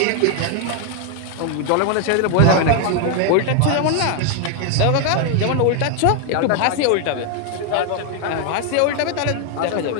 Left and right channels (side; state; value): both; different; correlation 0.01